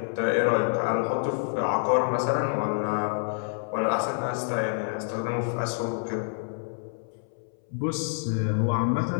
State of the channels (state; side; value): silent; right; 60 dB below the other